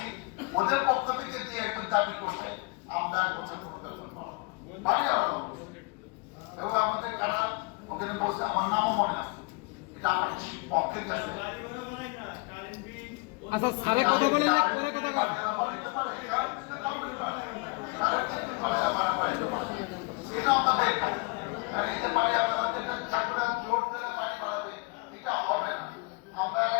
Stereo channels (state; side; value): quieter; right; 28.2 dB